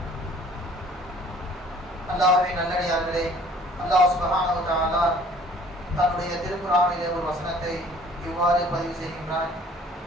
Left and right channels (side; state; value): both; normal; correlation 0.54